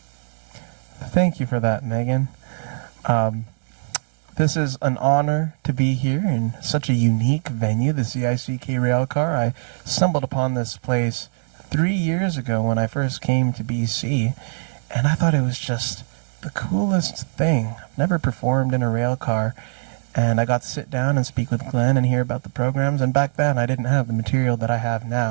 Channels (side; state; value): left; silent; digital silence